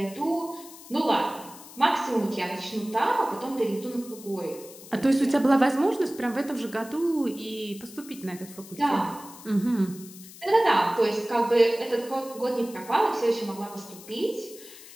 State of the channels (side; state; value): left; noise; hiss, 18 dB below the sound